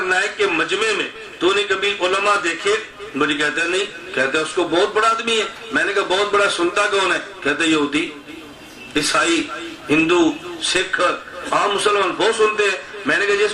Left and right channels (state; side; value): identical; both; correlation 1.00